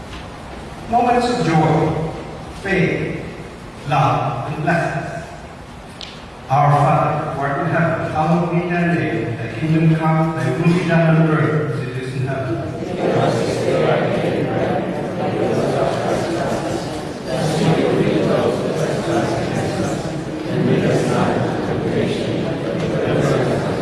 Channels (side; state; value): both; identical; correlation 1.00